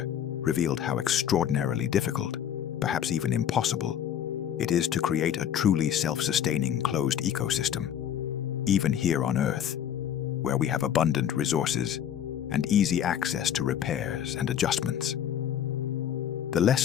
revealed how extraordinarily difficult, perhaps even impossible, it is to create a truly self-sustaining closed ecosystem, even here on Earth, where we have abundant resources and easy access to repairs and adjustments. The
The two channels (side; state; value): right; quieter; 9.6 dB